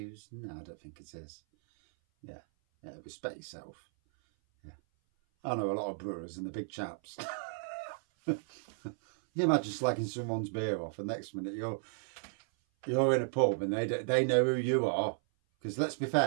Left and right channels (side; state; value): left; silent; 55 dB below the other